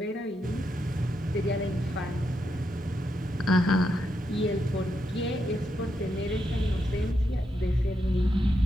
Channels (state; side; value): normal; both; correlation 0.83